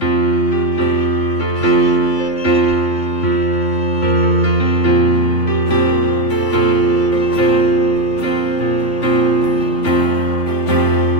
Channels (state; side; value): late; right; 3.5 ms